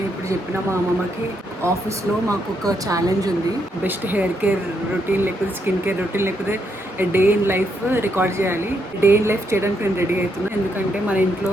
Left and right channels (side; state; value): both; normal; correlation 0.78